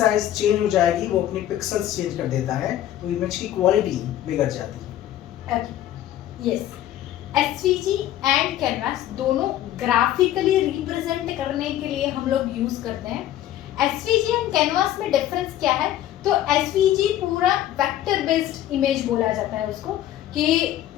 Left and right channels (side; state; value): right; quieter; 12.6 dB